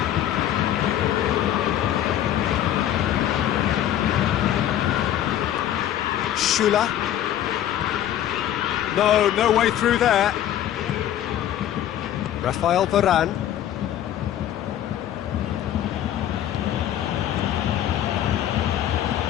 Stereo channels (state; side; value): quieter; right; 11.5 dB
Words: Schüller. No way through there. Rafael Varane.